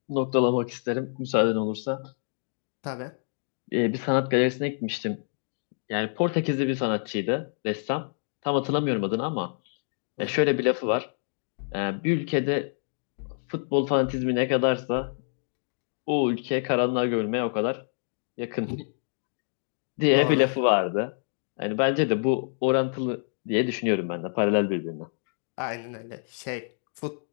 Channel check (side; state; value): right; silent; digital silence